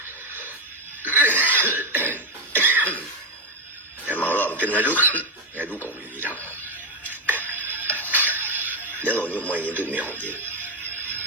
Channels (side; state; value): both; normal; correlation 0.09